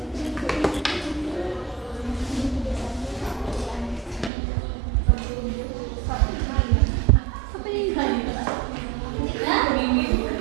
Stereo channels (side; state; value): left; drops out; at 4.3 s